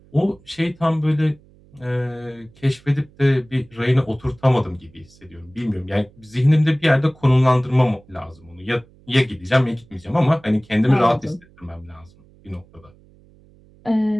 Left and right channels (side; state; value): right; noise; hum, 28 dB below the sound